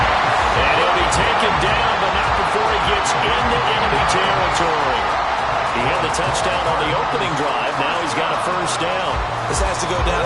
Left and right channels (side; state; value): both; identical; correlation 1.00